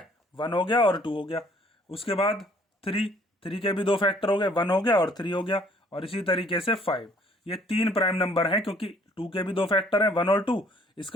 1 हो गया और 2 हो गया। उसके बाद 3 के भी 2 फैक्टर हो गए, 1 हो गया और 3 हो गया। और इसी तरीके से 5। ये 3 प्राइम नंबर हैं, क्योंकि 2 के भी 2 फैक्टर हैं, 1 और 2,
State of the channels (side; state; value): both; normal; correlation 0.59